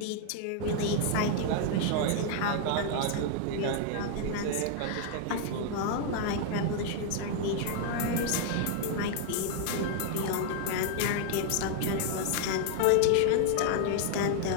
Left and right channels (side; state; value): both; different; correlation 0.00